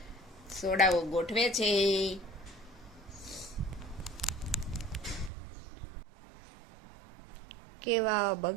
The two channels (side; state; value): left; drops out; at 5.3 s